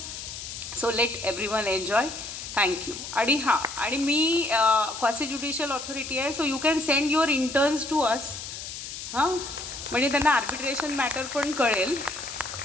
So let everyone enjoy. Thank you. आणि हां, आणि मी क्वासी ज्युडिशियल ऑथॉरिटी आहे, so you can send your interns to us. हां, म्हणजे त्यांना आर्बिट्रेशन मॅटर पण कळेल.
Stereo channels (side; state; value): left; noise; hiss, 9 dB below the sound